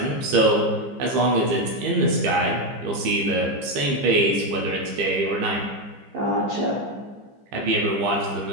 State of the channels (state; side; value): late; left; 15 ms